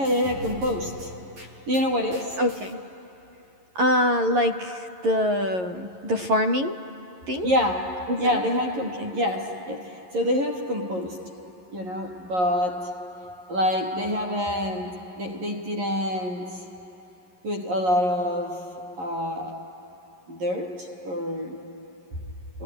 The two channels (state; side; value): late; left; 11 ms